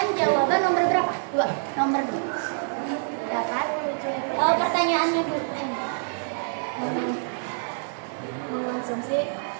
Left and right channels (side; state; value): left; silent; digital silence